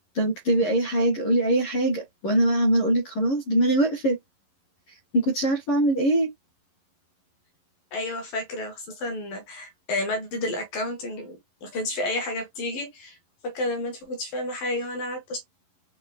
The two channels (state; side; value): late; right; 11 ms